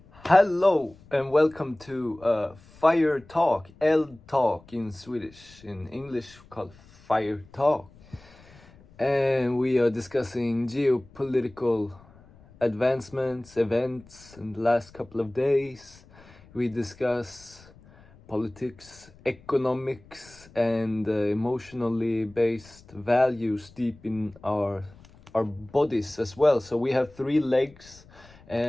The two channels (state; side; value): noise; left; rumble, 25 dB below the sound